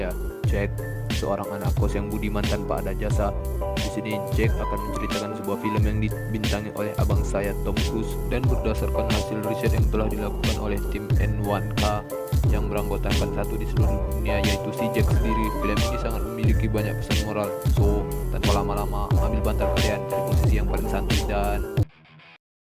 Jack, seorang anak kos yang budiman tanpa ada jasa. Di sini Jack akan menceritakan sebuah film yang dibintangi oleh abang saya Tom Cruise dan berdasarkan hasil riset yang telah dilakukan oleh tim N1K yang beranggotakan satu di seluruh dunia, yaitu si Jack sendiri. Film ini sangat memiliki banyak pesan moral. So, tanpa lama-lama, ambil bantal kalian, cari posisi yang paling santai dan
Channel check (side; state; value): both; identical; correlation 1.00